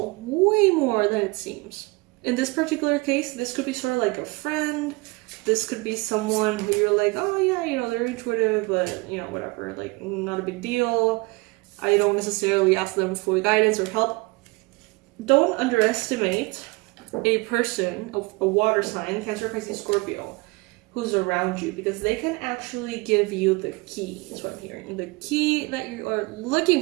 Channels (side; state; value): left; quieter; 25.3 dB